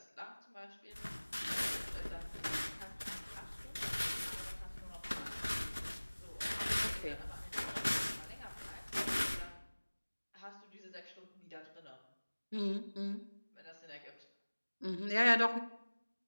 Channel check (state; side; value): inverted; both; correlation -1.00